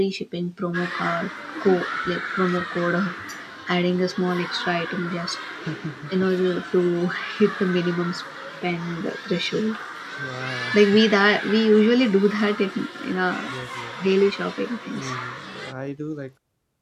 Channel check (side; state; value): both; identical; correlation 1.00